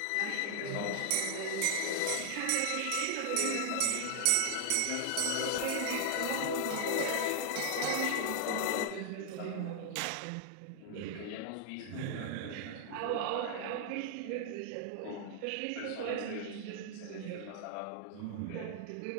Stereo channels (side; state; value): both; different; correlation 0.00